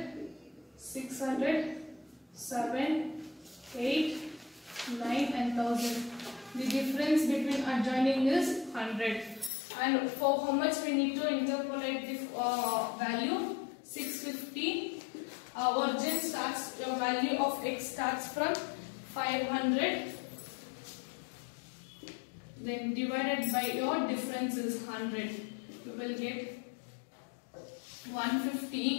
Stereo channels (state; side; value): drops out; right; at 9.5 s